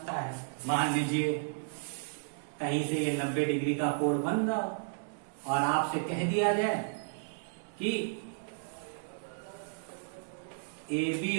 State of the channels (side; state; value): left; silent; digital silence